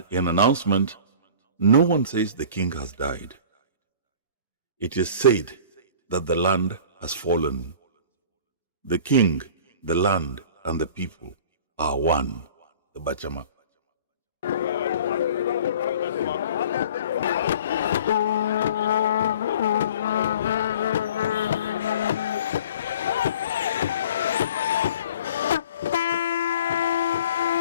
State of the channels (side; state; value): both; inverted; correlation -0.44